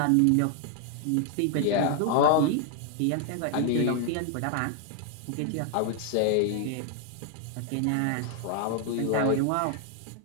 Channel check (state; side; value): different; both; correlation 0.00